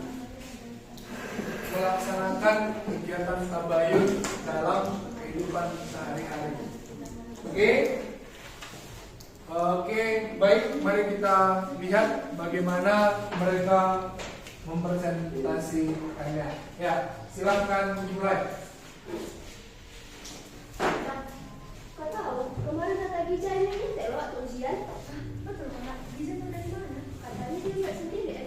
melaksanakan kegiatan tabayun dalam kehidupan sehari-hari. Oke, baik, mari kita lihat bagaimana mereka mempresentasikannya. Ya, silahkan dimulai. Kau tahu, kemarin kata Gija ini nyetel waktu ujian. Betul Kak, Giza tahu dari mana? Katanya dia buat sendiri,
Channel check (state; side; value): identical; both; correlation 1.00